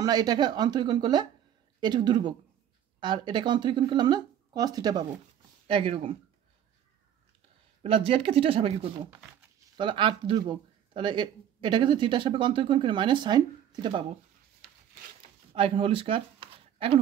এটাকে অন্তরীকরণ করলে এটুকু দুর্ভোগ, আর এটাকে অন্তরীকরণ করলে আমরা কস থিটা পাবো একই রকম। প্লাস জেডকে থিটা সাপেক্ষে করবো, তাহলে আর দুর্ভোগ, তাহলে এটাকে যদি থিটা সাপেক্ষে অন্তরীকরণ করে মাইনাস সাইন থিটা পাবো। আর এখন হোল স্কয়ার, এখন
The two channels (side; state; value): left; quieter; 10.0 dB